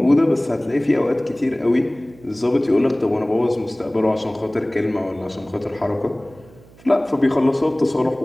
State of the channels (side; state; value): right; noise; hum, 25 dB below the sound